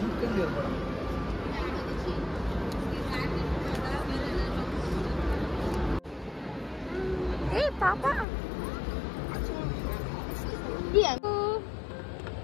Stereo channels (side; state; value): right; drops out; at 8.2 s